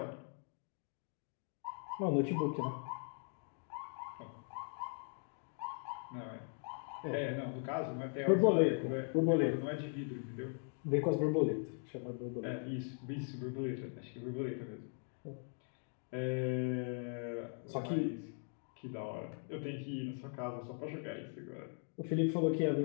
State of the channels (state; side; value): silent; right; 51 dB below the other